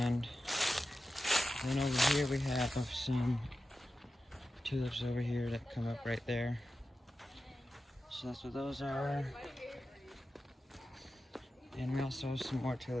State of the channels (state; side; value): normal; both; correlation 0.93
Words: then over here we have some tulips over here that come up right there. So that's what those are. And we also have some more